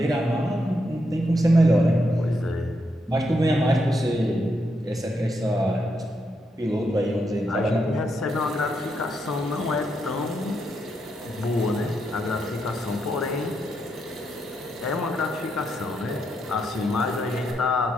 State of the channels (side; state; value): both; normal; correlation 0.80